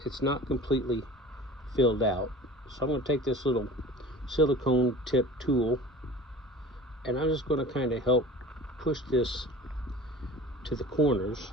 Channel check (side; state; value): both; normal; correlation 0.40